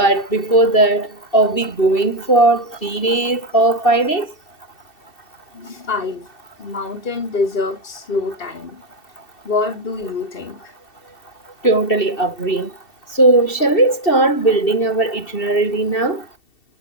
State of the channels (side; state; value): right; late; 2.7 ms